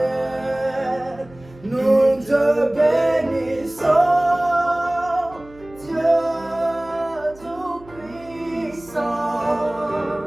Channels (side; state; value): right; noise; hum, 22 dB below the sound